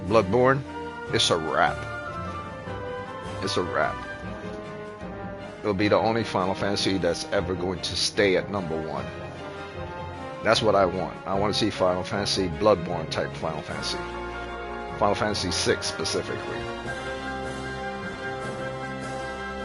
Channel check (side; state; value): both; identical; correlation 1.00